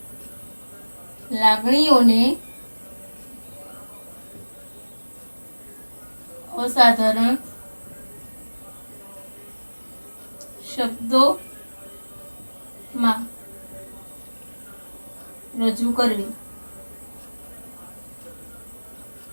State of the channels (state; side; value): inverted; both; correlation -1.00